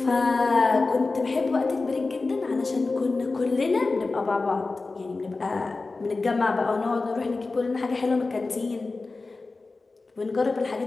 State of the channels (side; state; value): right; quieter; 3.7 dB